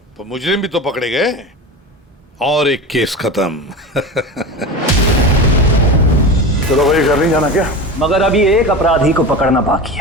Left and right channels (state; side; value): normal; both; correlation 0.28